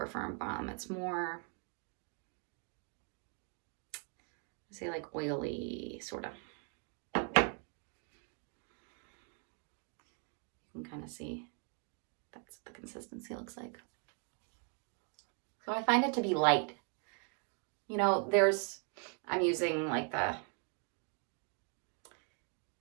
firm balm. It's more, say, like oily, sort of. You can kind of see that's what the consistency looks like. So I find it to be light. You know, I'm using like the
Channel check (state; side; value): quieter; left; 40.0 dB